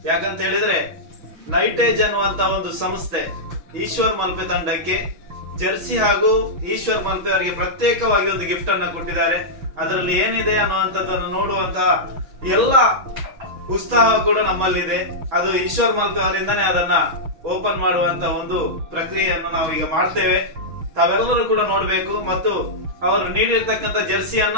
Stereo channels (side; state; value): left; late; 6.1 ms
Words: ಯಾಕಂತ ಹೇಳಿದ್ರೆ ನೈಟೇಜ್ ಅನ್ನುವಂತ ಒಂದು ಸಂಸ್ಥೆ ಈಶ್ವರ್ ಮಲ್ಪೆ ತಂಡಕ್ಕೆ ಜರ್ಸಿ ಹಾಗೂ ಈಶ್ವರ್ ಮಲ್ಪೆ ಅವರಿಗೆ ಪ್ರತ್ಯೇಕವಾಗಿ ಒಂದು ಗಿಫ್ಟ್ ಅನ್ನ ಕೊಟ್ಟಿದ್ದಾರೆ. ಅದರಲ್ಲಿ ಏನಿದೆ ಅನ್ನುವಂಥದ್ದನ್ನು ನೋಡುವಂತಹ ಎಲ್ಲ ಉತ್ಸಾಹ ಕೂಡ ನಮ್ಮಲ್ಲಿದೆ. ಅದು ಈಶ್ವರ್ ಮಲ್ಪೆ ಅವರಿಂದನೇ ಅದನ್ನ ಓಪನ್ ಮಾಡುವಂತ ಒಂದು ಪ್ರಕ್ರಿಯೆಯನ್ನು ನಾವು ಈಗ ಮಾಡ್ತೇವೆ. ತಾವೆಲ್ಲರೂ ಕೂಡ ನೋಡ್ಬೇಕು ಮತ್ತು ಅವರು ನೀಡಿರ್ತಕ್ಕಂಥ